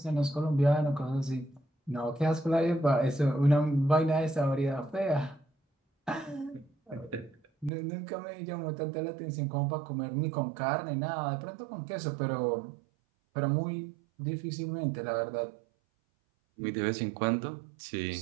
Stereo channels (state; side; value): drops out; left; at 7.7 s